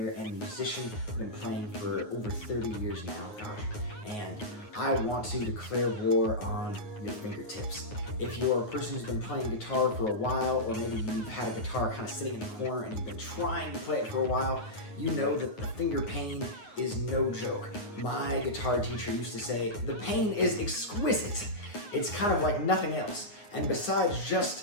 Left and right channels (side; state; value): right; late; 9.5 ms